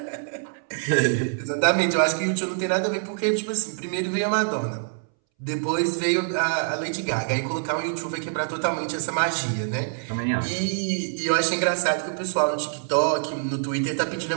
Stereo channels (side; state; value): left; silent; 62 dB below the other